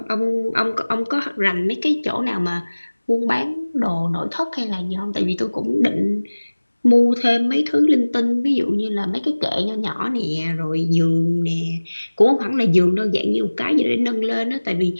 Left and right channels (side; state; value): both; inverted; correlation -1.00